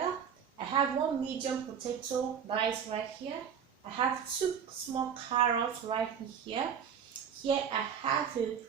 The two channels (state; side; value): quieter; left; 7.6 dB